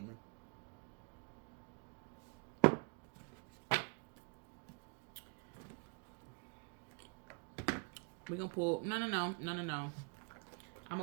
We're gonna pull... No. I'm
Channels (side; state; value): left; quieter; 36.6 dB